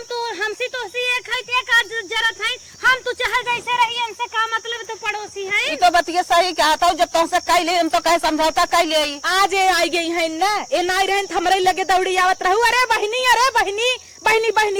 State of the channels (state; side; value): identical; both; correlation 1.00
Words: तो हमसी तो सी एक है ते का जरूरत है हम तो चाहे जैसे रही हमसे का मतलब तो पड़ोसी है ई तो बतिया सही कहता हूं जब तुमसे कह ले हम तो कहे समझौता कह ले आज आई गई है ना ए नाई रहन हमरे लगे दौड़ी आवत रहू अरे बहनी बहनी